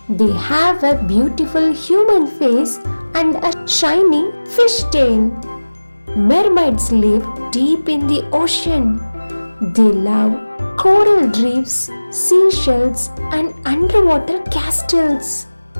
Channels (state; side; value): inverted; both; correlation -1.00